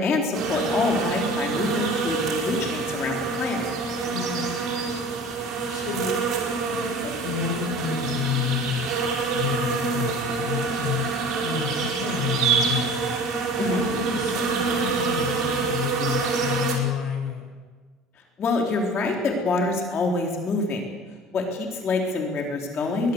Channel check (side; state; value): both; normal; correlation 0.42